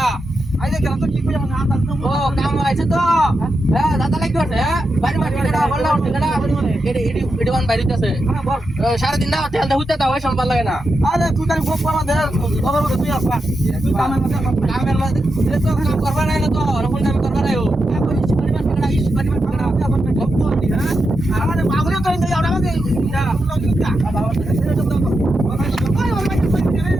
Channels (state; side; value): normal; both; correlation 0.87